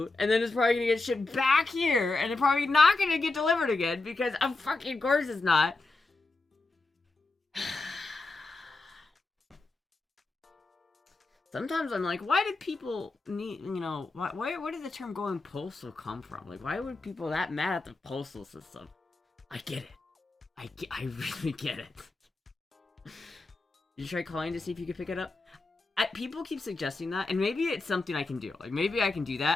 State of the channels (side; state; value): right; quieter; 3.4 dB